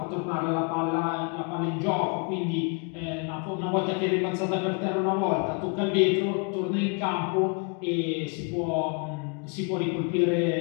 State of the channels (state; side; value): quieter; right; 34.2 dB